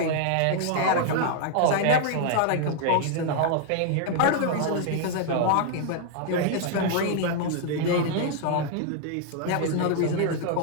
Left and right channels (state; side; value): different; both; correlation 0.00